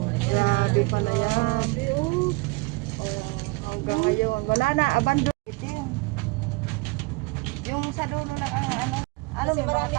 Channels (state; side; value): quieter; left; 25.3 dB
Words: Grabe pala yan. Oh, hanggang ngayon. Wala na, abandon. Yung sa dulo lang ang ano. Ano, may mga